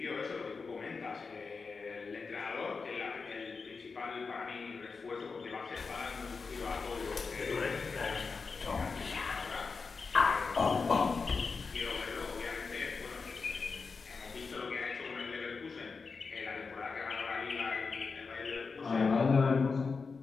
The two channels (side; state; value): right; quieter; 4.7 dB